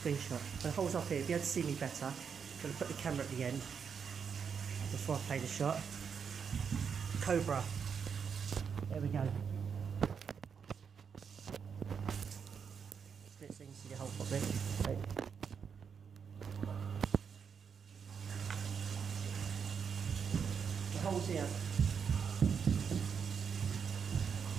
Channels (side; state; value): left; quieter; 6.7 dB